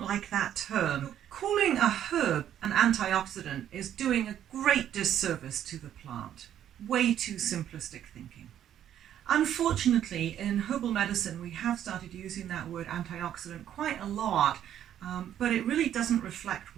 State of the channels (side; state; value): left; quieter; 10.6 dB